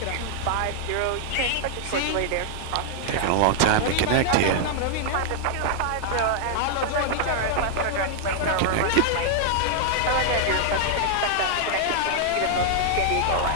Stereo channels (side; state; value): both; different; correlation -0.01